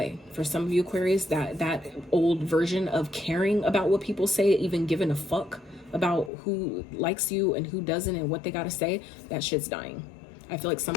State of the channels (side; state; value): right; drops out; at 6.3 s